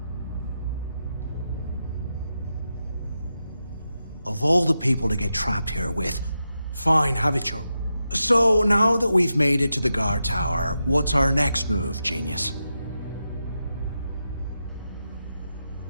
Of all the people to get trapped here with, fine, have it your... So, now that we've made it to the guard tower, what's our next move, genius?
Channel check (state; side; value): inverted; both; correlation -0.88